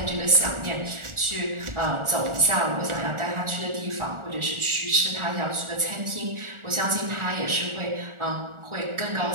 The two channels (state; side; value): late; left; 1.4 ms